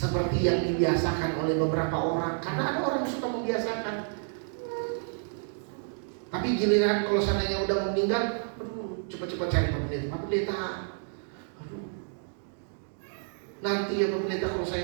yang dibiasakan oleh beberapa orang. Karena ada orang yang suka membiasakan. Tapi giliran kalau seandainya udah meninggal, cepat-cepat cari Pak Pendeta. Nanti ya Pak Pendeta kalau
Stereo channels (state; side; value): silent; left; 58 dB below the other